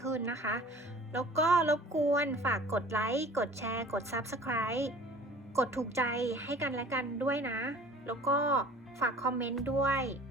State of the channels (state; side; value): normal; both; correlation 0.47